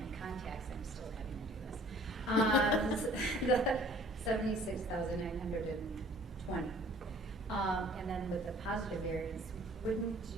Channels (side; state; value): both; normal; correlation 0.53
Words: contacts, I'm still having to do this. The 76,920. And then with the positive variance, would